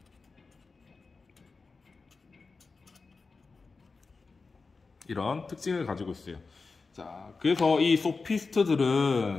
이런 특징을 가지고 있어요. 자, 그래서 이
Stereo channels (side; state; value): right; quieter; 4.2 dB